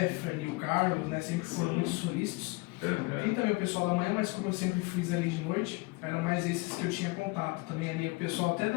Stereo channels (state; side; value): quieter; right; 26.0 dB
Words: o Carlos, né, sempre foram muito solícitos. Tem também o pessoal da manhã, mas como eu sempre fiz ali de noite, eram mais esses que eu tinha contato. Também ali o pessoal até